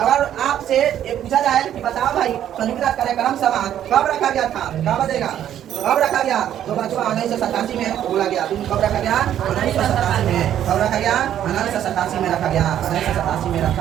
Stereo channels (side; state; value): left; quieter; 10.8 dB